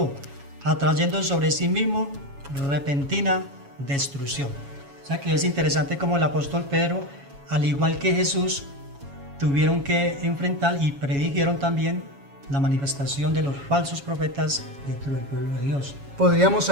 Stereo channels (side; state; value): left; late; 7.2 ms